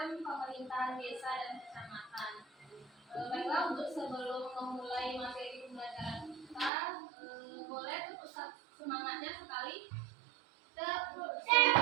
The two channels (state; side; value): drops out; left; at 6.7 s